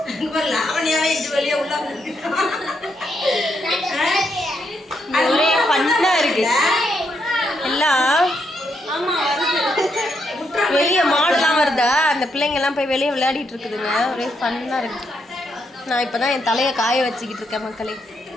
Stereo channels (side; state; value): both; normal; correlation 0.78